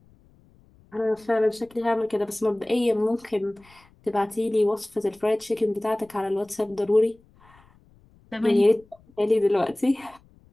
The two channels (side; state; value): left; noise; rumble, 30 dB below the sound